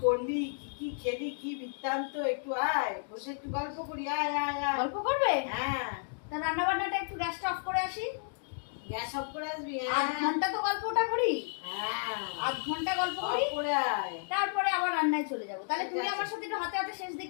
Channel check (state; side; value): silent; right; digital silence